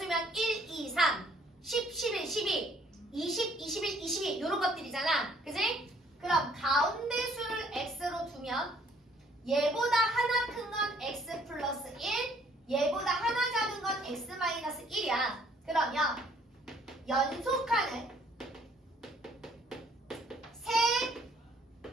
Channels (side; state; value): both; normal; correlation 0.62